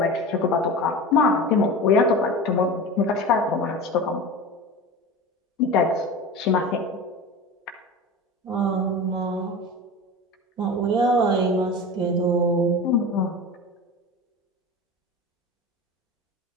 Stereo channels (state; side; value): normal; both; correlation 0.31